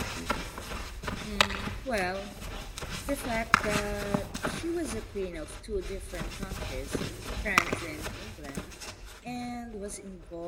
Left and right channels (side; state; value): both; identical; correlation 1.00